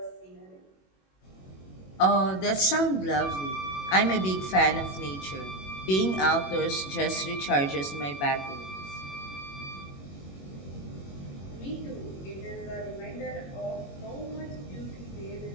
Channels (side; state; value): right; late; 21 ms